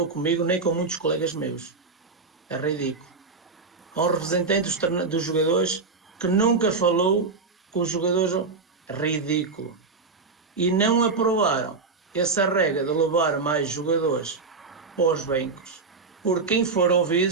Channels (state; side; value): quieter; left; 4.3 dB